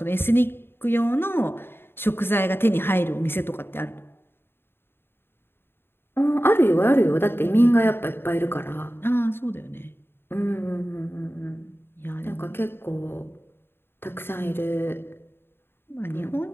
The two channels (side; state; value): right; late; 0.11 ms